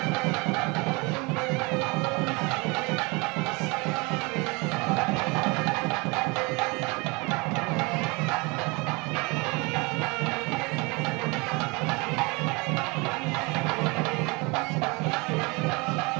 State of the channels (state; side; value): quieter; left; 27.4 dB